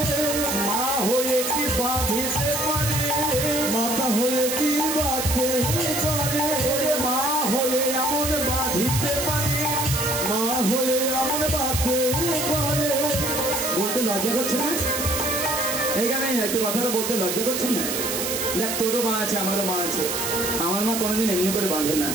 মা হয়ে কি বাঁধিতে পারে, মাতা হয়ে কি বাঁধতে পারে, ওরে মা হয়ে এমন বাঁধিতে পারে, মা হয়ে এমন বাঁধতে পারে। বলতে লজ্জা করছে না? এইখানে একটু কথাটা বলতে লজ্জা করছে না? দেখ তোরও মা আছে আমারও মা আছে, আমার মা কোনোদিন এমনি করে বাঁধে না,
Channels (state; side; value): noise; right; hiss, 2 dB below the sound